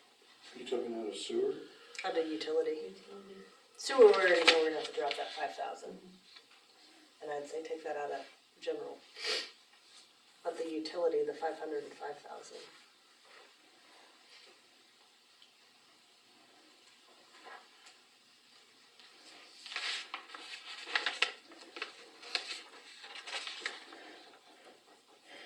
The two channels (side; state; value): both; identical; correlation 1.00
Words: You took it out of sewer? Out of utility. Sewer, we already know we're gonna have to drop that 5,000. And I'd say take that out of general. But the utility, the 500 and 5,000.